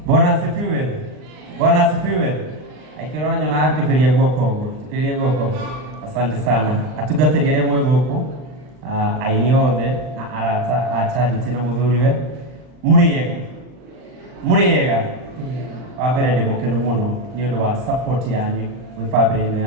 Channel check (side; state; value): left; late; 39 ms